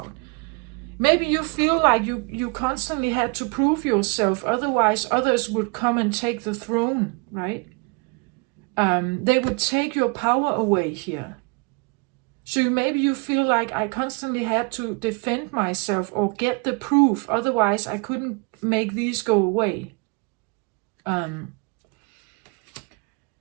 Maybe you feel like you constantly had to prove yourself. Otherwise, others would come and take the throne, right? They would take your power away here. So maybe you feel like I constantly had to defend myself or get the proof. Otherwise, I couldn't make these go away.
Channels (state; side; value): quieter; left; 31.7 dB